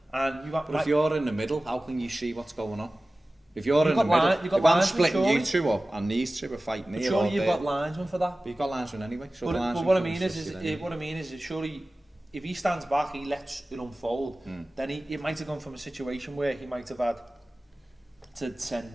And you got, but if you're in the middle, how can you see what's going on? If you're in the middle, if I'm splitting you two up and these two are fighting here all day. Surely you've got linesmen for that. But you've got linesmen anyway. So but what I mean is surely if he stands back, he lets it unfold. Then it might have gone from a situation where he might have had to send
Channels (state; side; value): normal; both; correlation 0.97